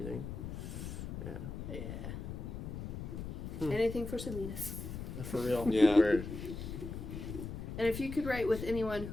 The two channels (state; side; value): noise; left; rumble, 6 dB below the sound